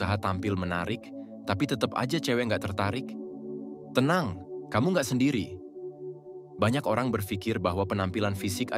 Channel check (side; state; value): both; identical; correlation 1.00